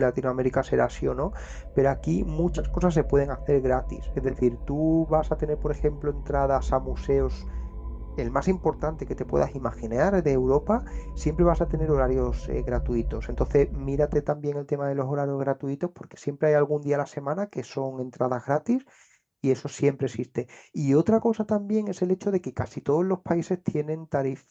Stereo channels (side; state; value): both; identical; correlation 1.00